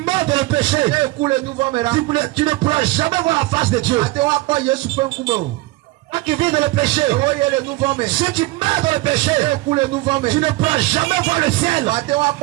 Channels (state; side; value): quieter; left; 19.9 dB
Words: dans le péché. Ne ku le nuvɔ me la. Tu ne pourras jamais voir la face de Dieu. Ate wa kpɔ Yesu ƒe ŋkume o. Toi qui vis dans le péché. Ewo ye le nuvɔ me. Ceux qui meurent dans le péché. Ne ku le nuvɔ me. Tu ne pourras jamais voir le ciel. Ate wa